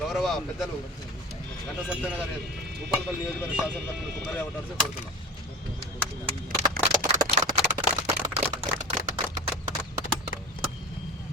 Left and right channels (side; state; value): both; normal; correlation 0.32